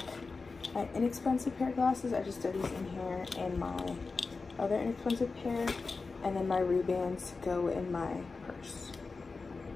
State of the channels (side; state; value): right; quieter; 4.2 dB